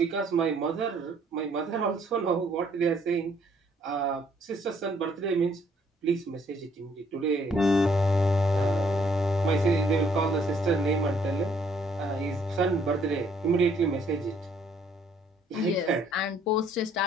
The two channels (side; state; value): both; normal; correlation 0.65